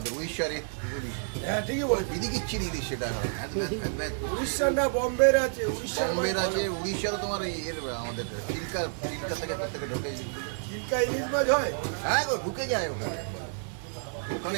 উড়িষ্যারে ইলিশ। হ্যাঁ ঠিকই বলো, বিদিকিচ্ছির ইলিশ সেটা। উড়িষ্যার না বম্বের আছে, বম্বের আছে, উড়িষ্যারও তোমার এর আমাদের চিল্কা থেকে প্রত্যেকে ঢোকে ইলিশ। চিল্কা ইলিশ মাছ হয়? হ্যাঁ গো, ঢুকে যায় ওখানে, ওখানে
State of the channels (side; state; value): left; silent; 58 dB below the other